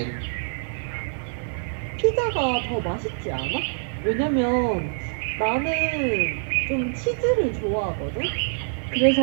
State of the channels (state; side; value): silent; left; digital silence